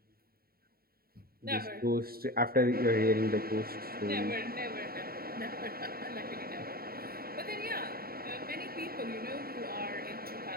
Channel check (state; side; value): late; left; 0.44 ms